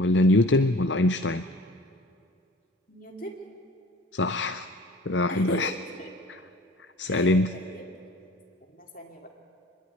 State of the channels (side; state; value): both; normal; correlation 0.47